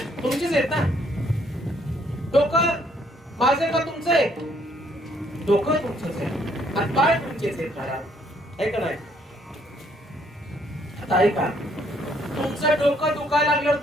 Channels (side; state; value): both; normal; correlation 0.67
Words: तुमचेच आहेत ना. डोकं माझे का तुमचं आहे? डोकं तुमचंच आहे, हातपाय तुमचेच आहेत महाराज, आहे का नाही. आता ऐका, तुमचं डोकं दुखायला लागल्यावर